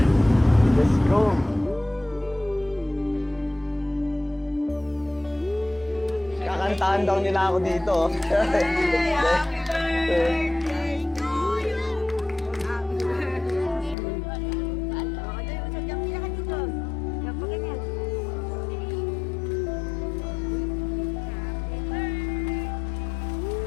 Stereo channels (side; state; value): right; drops out; at 14.0 s